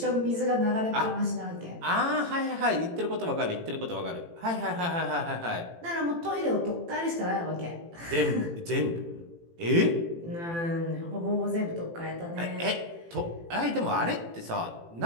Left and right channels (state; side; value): late; left; 18 ms